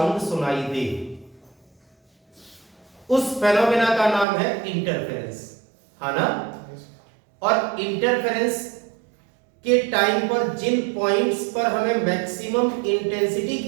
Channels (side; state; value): left; drops out; at 4.2 s